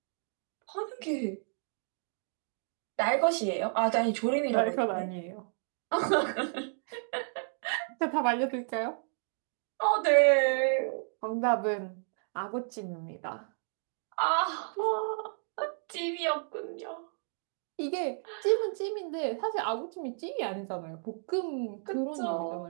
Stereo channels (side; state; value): left; silent; digital silence